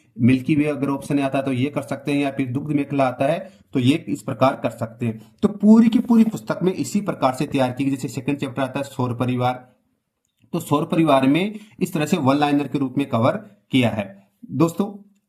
मिल्की वे अगर ऑप्शन आता है तो ये कर सकते हैं, या फिर दुग्ध मेखला आता है तो ये इस प्रकार कर सकते हैं। तो पूरी की पूरी पुस्तक में इसी प्रकार से तैयार की गई। जैसे सेकंड चैप्टर आता है सौर परिवार, तो सौर परिवार में इस तरह से वन लाइनर के रूप में कवर किया है। दोस्तों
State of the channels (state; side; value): identical; both; correlation 1.00